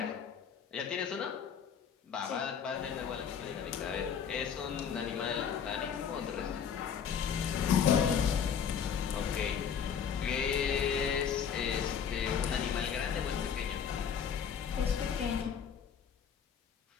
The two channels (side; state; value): right; quieter; 7.5 dB